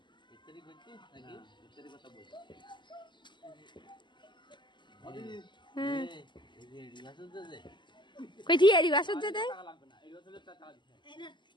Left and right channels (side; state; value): right; late; 0.22 ms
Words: কই ঠিক এরি বাসন যে দেয়